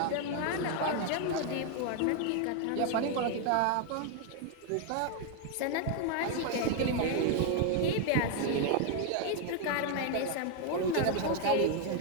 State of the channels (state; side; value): different; both; correlation 0.01